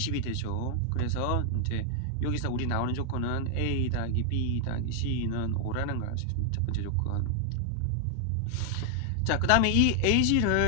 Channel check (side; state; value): both; different; correlation 0.00